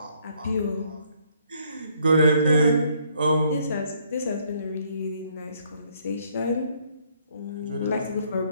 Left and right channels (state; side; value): inverted; both; correlation -0.66